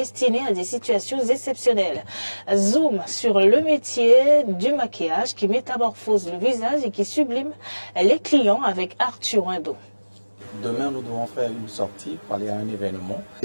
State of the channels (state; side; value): inverted; both; correlation -1.00